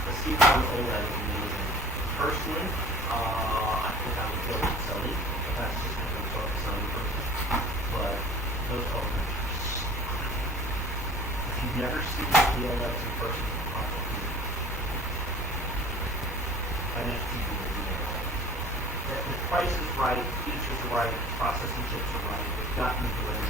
The C1 OLED is amazing. Personally, I think I would go with Sony, but that's just kind of a Sony person. But those OLEDs are so good. If you've never seen the OLEDs in person, probably an FTV will be there. The price is right, features are right, processing chips are right. They've gotten to where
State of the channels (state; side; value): normal; both; correlation 0.46